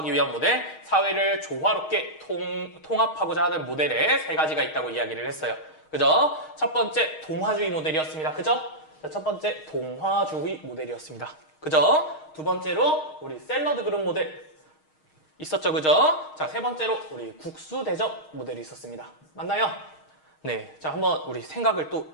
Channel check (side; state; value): right; late; 6.4 ms